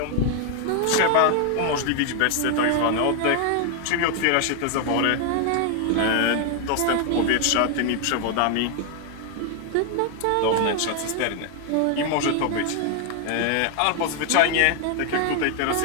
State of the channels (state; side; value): different; both; correlation 0.00